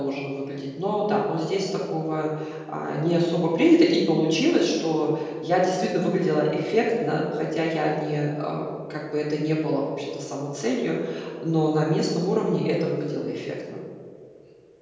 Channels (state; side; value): identical; both; correlation 1.00